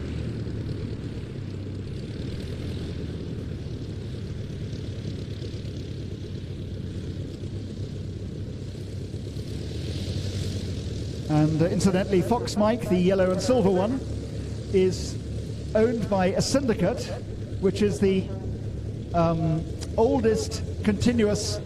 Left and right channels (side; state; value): both; identical; correlation 1.00